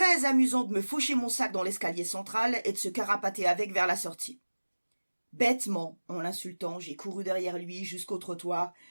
amusant de me faucher mon sac dans l'escalier central et de se carapater avec vers la sortie. Bêtement, en l'insultant, j'ai couru derrière lui jusqu'au trottoir,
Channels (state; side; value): inverted; both; correlation -1.00